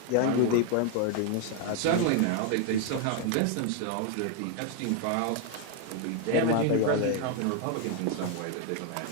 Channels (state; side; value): different; both; correlation 0.01